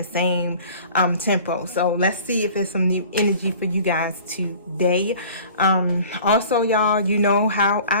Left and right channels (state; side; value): inverted; both; correlation -0.46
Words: same tempo. So let's see if there's some new energy for you guys today. Also, y'all, you know how